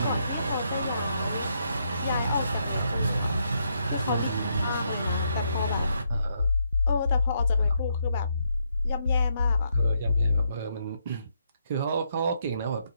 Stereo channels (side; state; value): both; inverted; correlation -0.77